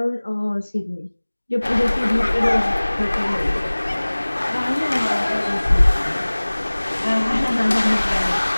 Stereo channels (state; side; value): inverted; both; correlation -1.00